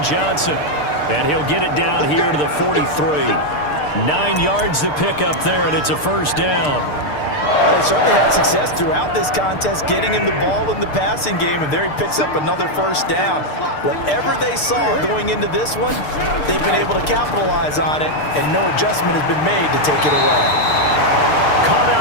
Johnson. And he'll get it down here to the 43. 9 yards to pick up there, and it's a 1st down. They certainly had success throughout this contest, getting him the ball in the passing game, and there he picks up another 1st down. Whatever they saw going into this one, they've been able to capitalize on it, and no adjustment has been made to take it away. Caught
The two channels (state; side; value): late; right; 6.7 ms